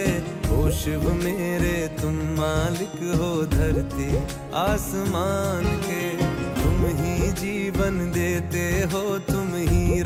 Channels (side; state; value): both; identical; correlation 1.00